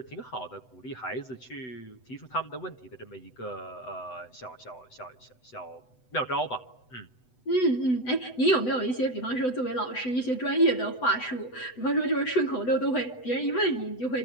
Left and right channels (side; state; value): right; late; 8.0 ms